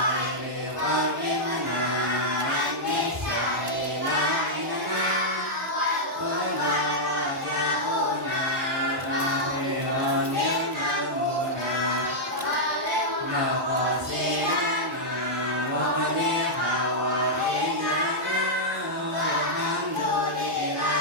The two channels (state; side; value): normal; both; correlation -0.06